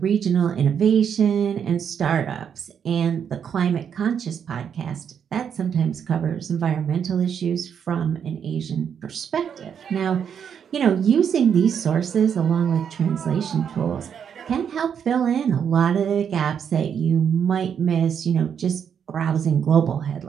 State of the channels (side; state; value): left; quieter; 7.8 dB